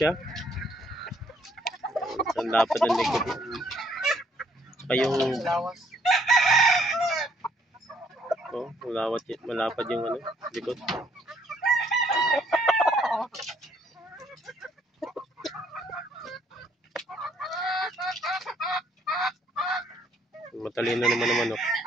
Ang lapad ng likod. Saka yung malapad yung ano, likod. Matalino naman ang manok.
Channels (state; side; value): normal; both; correlation 0.66